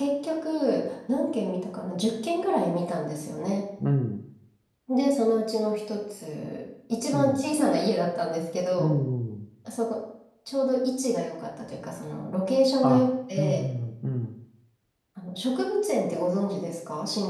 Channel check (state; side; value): identical; both; correlation 1.00